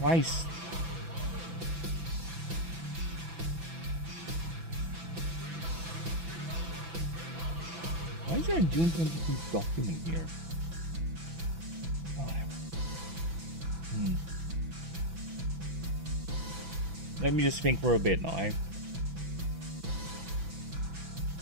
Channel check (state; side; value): late; left; 6.0 ms